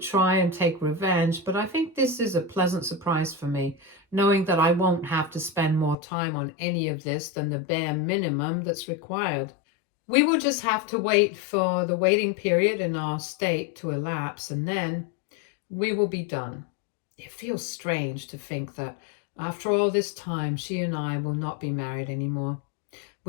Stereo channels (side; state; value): right; drops out; at 6.0 s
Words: and take revenge, but I think this is a pleasant surprise for me, knowing that I won't have to spend more time on any of this than the bare minimum that's required. We will just have to wait for the waiting period in our state to elapse, and then we will be done. It feels strange to think that after all this time, she and I will not be married anymore.